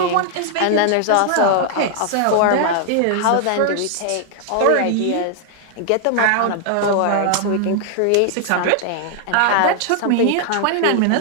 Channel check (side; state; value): both; different; correlation 0.00